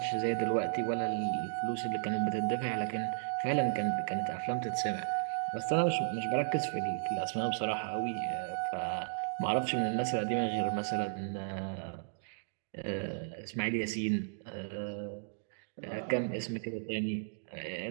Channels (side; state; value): left; silent; digital silence